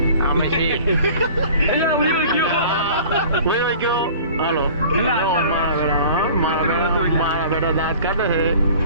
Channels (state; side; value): inverted; both; correlation -0.45